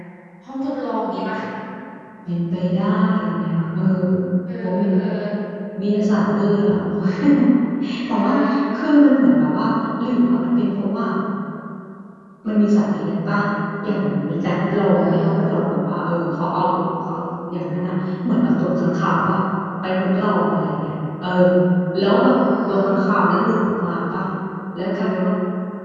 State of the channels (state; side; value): identical; both; correlation 1.00